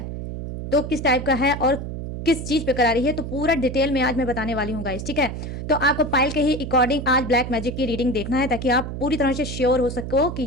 तो किस टाइप का है और किस चीज़ पे करा रही है, तो पूरा डिटेल में आज मैं बताने वाली हूँ गाइस, ठीक है। तो आपको पाइल के ही अकॉर्डिंग आज ब्लैक मैजिक की रीडिंग देखना है, ताकि आप पूरी तरह से श्योर हो सको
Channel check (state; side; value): noise; right; hum, 7 dB below the sound